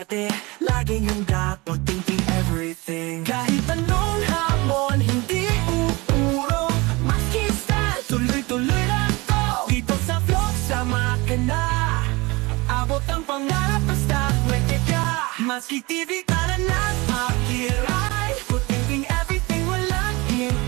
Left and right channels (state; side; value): quieter; left; 24.0 dB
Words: laging handa pag-thinking everything. Kahit anong hamon, hindi uurong, maski style, tuloy-tuloy lang to. Dito sa vlog, sama ka na, abot ang pangarap basta pwede ka. Maski TV ka na na't makiray, pag-thinking everything, walang